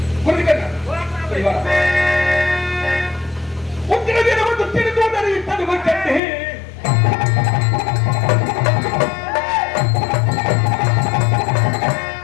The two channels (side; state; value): right; drops out; at 6.2 s